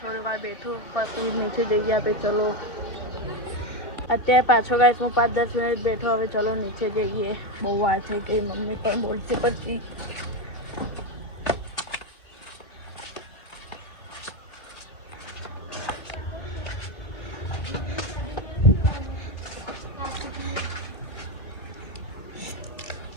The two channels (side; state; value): right; late; 2.2 ms